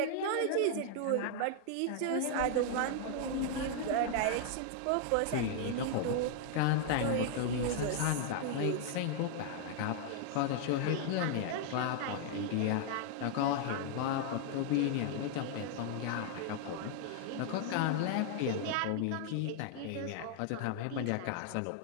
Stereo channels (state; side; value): different; both; correlation 0.00